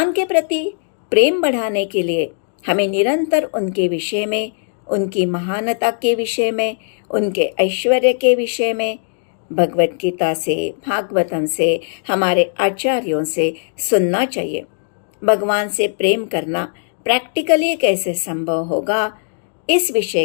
के प्रति प्रेम बढ़ाने के लिए हमें निरंतर उनके विषय में, उनकी महानता के विषय में, उनके ऐश्वर्य के विषय में भगवत गीता से, भागवतम से, हमारे आचार्यों से सुनना चाहिए। भगवान से प्रेम करना प्रैक्टिकली कैसे संभव होगा, इस विषय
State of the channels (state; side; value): silent; right; digital silence